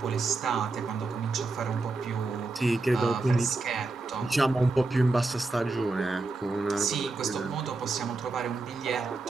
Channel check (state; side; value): quieter; left; 3.4 dB